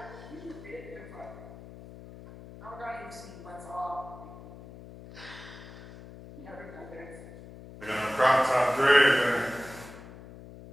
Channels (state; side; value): noise; left; hum, 16 dB below the sound